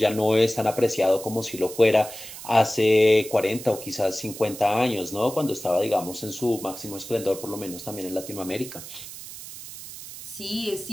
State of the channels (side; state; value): right; noise; hiss, 13 dB below the sound